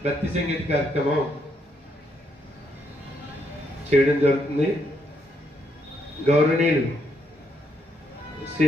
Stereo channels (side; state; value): both; normal; correlation 0.76